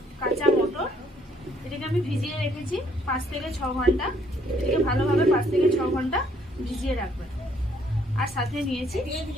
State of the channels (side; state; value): both; normal; correlation 0.66